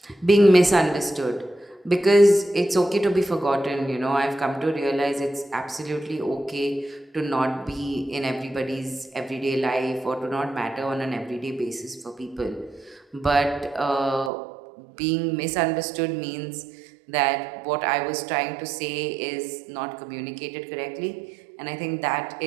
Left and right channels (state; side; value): drops out; left; at 14.3 s